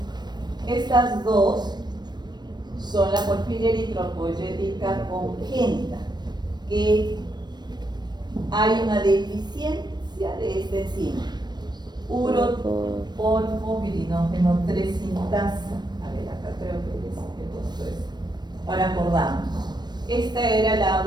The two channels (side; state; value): left; late; 0.21 ms